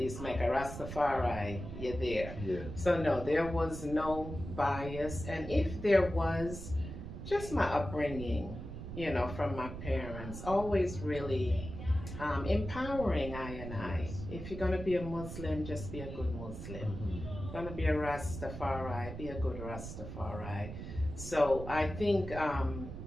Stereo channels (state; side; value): noise; right; rumble, 9 dB below the sound